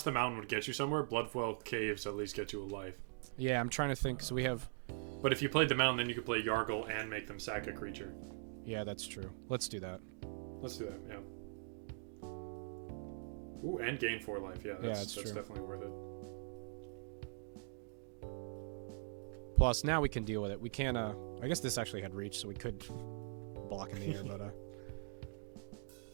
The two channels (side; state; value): left; silent; digital silence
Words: the mountain would get you somewhere, Bloodfell Caves at least get you a life. Yeah, I'm trying to think. So we have. But if you played the mountain, then you could play Yargle and make them sack a creature. Yeah, that's true. Let's do that. Let's do that. Yeah. Ooh, and gain 4 life. Yeah, that's true. definitely worth it. Plus, now we can deal with it. We can. I guess this actually had reach, so we could block in the air, but